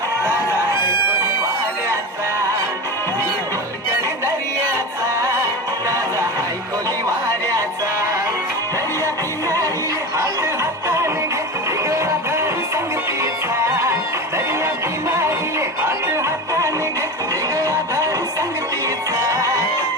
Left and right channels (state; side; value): normal; both; correlation 0.26